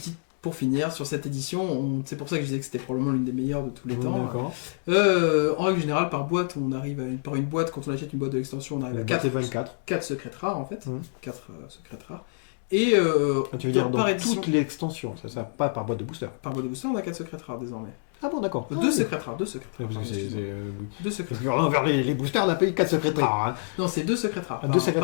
pour finir, sur cette édition, c'est pour ça que je disais que c'était probablement l'une des meilleures de tous les temps. D'accord. En règle générale, par boîte, on arrive par une boîte, quand on achète une boîte de l'extension, on arrive à 4 secrètes rares en fait. 4 secrètes rares. Et tu veux dire par dans édition, toute l'extension, ça pas par boîte de booster. par boîte de booster, on a 4 secrètes rares désormais. Ah bon, d'accord. 2 secrètes rares, 2 secrètes rares. Parce que pardon, deux secrètes Parce que envers les boosters, on a payé 4 secrètes rares. Hein. Non, c'est 2 secrètes rares. Deux secrètes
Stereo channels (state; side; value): silent; right; digital silence